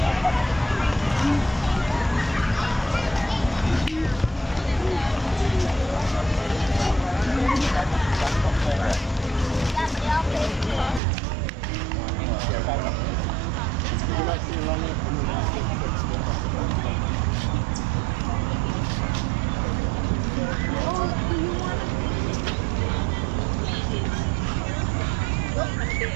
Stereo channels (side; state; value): left; drops out; at 11.0 s